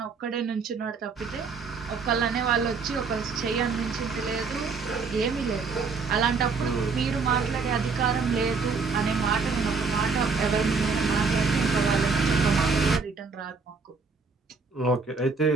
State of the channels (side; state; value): left; quieter; 4.8 dB